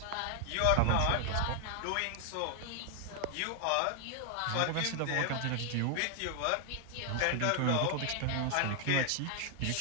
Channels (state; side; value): different; both; correlation 0.00